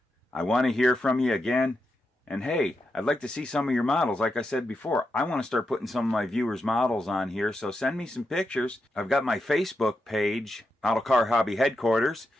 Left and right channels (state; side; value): normal; both; correlation 0.86